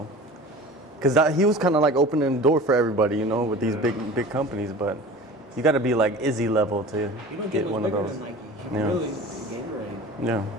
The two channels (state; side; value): normal; both; correlation 0.39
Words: because he was kind of like opening the door for everybody, you know, with these big companies. But you got to be like Izzy level to You don't get get one of bigger those. than Nike. Yeah. Really, Gatorade. Yeah.